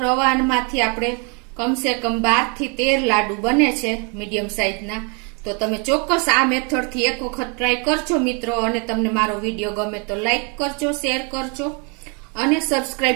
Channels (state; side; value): quieter; left; 34.7 dB